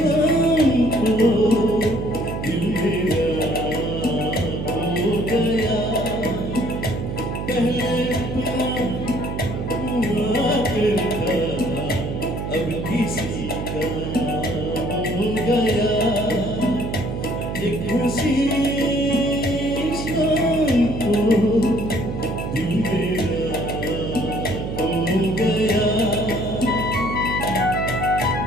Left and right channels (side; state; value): right; noise; hum, 5 dB below the sound